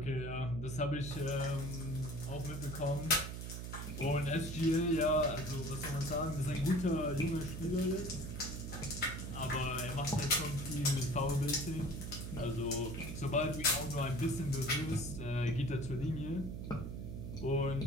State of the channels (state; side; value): noise; right; hum, 6 dB below the sound